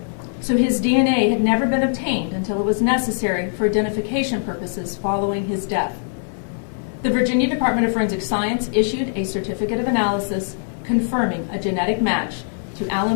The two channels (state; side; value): silent; right; digital silence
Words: so his DNA had never been obtained until it was necessary for identification purposes following his death. The Virginia Department of Forensic Science issued a certificate of analysis confirming a genetic match to